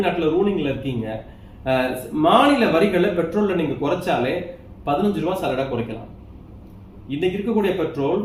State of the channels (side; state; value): both; identical; correlation 1.00